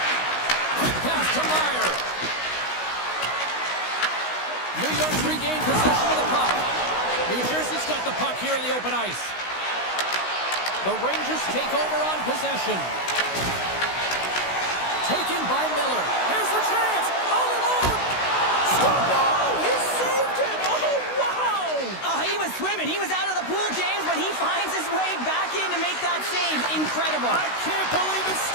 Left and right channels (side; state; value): right; late; 16 ms